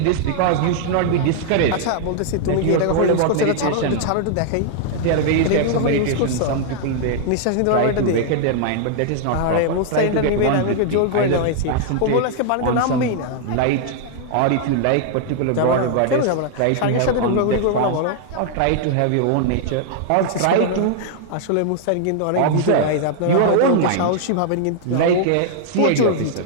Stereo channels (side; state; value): both; different; correlation -0.01